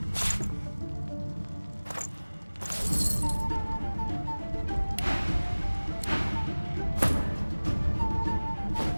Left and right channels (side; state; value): both; inverted; correlation -1.00